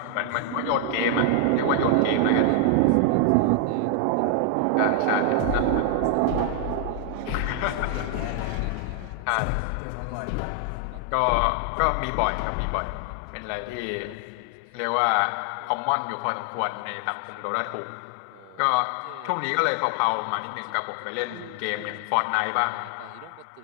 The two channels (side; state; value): both; different; correlation 0.00